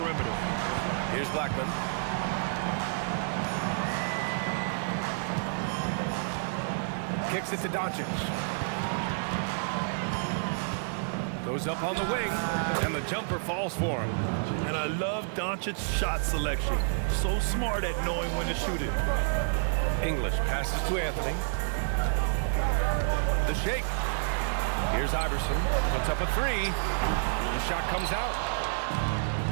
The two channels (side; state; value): left; silent; digital silence